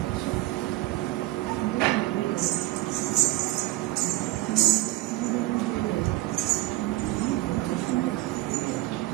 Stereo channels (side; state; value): left; quieter; 17.8 dB